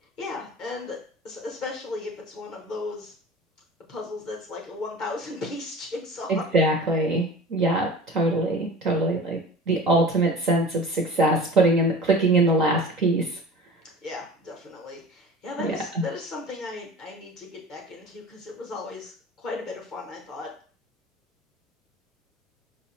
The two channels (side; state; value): both; normal; correlation 0.39